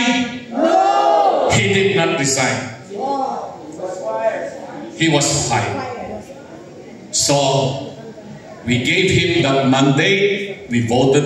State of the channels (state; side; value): identical; both; correlation 1.00